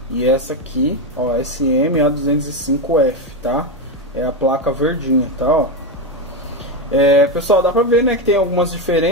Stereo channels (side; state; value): both; normal; correlation 0.11